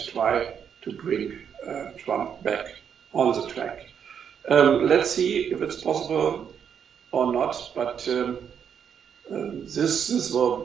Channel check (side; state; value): left; quieter; 7.9 dB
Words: try to bring Trump back on the track. Let's see if it's possible or not, but this